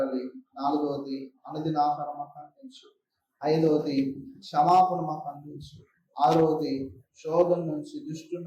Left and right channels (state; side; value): identical; both; correlation 1.00